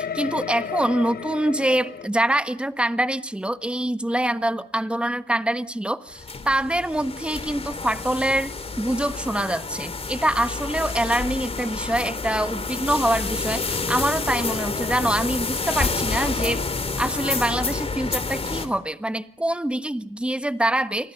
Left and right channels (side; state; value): both; normal; correlation 0.77